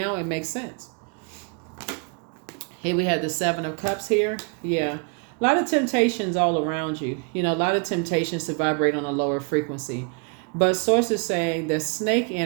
it makes sense. Here we have the Seven of Cups here. Yeah. A lot of temptations all around you. You know, a lot of temptations to vibrate on a lower frequency. But source is saying that snake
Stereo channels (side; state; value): left; quieter; 36.2 dB